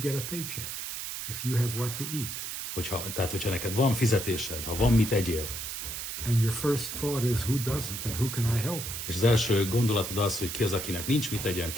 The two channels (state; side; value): noise; right; hiss, 5 dB below the sound